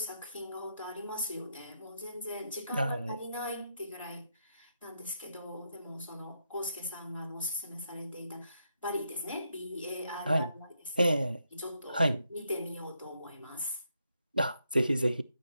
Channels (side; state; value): both; inverted; correlation -0.80